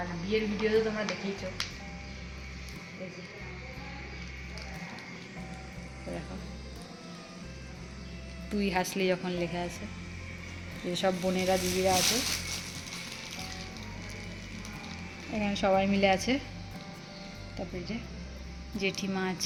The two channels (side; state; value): both; identical; correlation 1.00